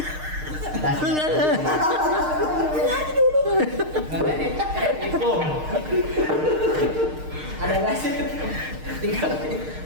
Ada nasi? Tinggal.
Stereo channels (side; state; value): left; late; 6.5 ms